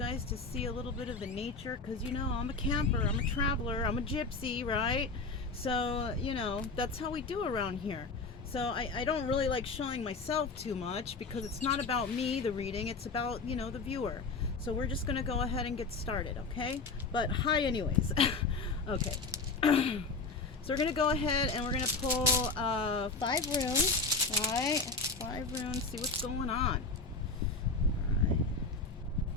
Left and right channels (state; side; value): quieter; right; 4.0 dB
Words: to see a little bit of the nature because, I'm a camper, I'm a traveler, I'm a gypsy, right? So, that's how we do around here. So I don't really like showing myself too much because it's not about me, the reading, it's about, the viewer. So we're just going to go ahead and get started, okay? But hi anyways. Okay. So we're going to go ahead and we're going to pull 5 runes, all right? 5 runes, see what's going on. All right.